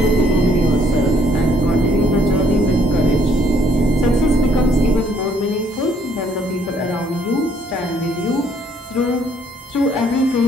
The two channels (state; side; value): normal; both; correlation 0.65